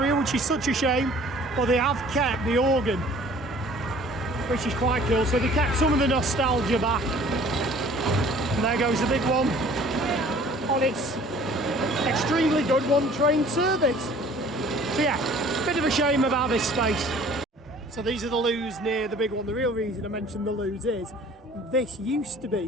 which is such a shame, but they have kept the organ, which is quite cool. So they kept some of the nostalgia back, and there goes the big one on its extremely good 1 train service. So yeah, bit of a shame about this space. So these are the loos near the big one. The real reason I mentioned the loos is this used to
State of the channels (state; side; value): normal; both; correlation 0.51